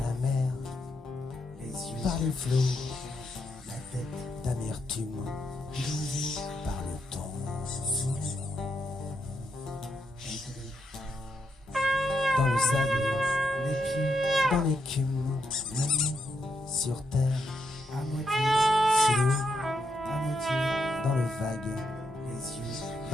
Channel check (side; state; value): both; normal; correlation 0.81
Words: mer, par les flots, la tête d'amertume par le temps. Dans le sable, les pieds dans l'écume, sur terre, à moitié sous l'eau, à moitié dans le vague, les yeux